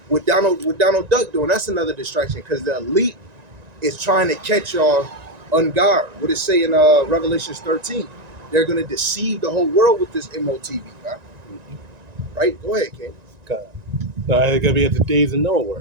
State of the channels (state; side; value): late; left; 1.9 ms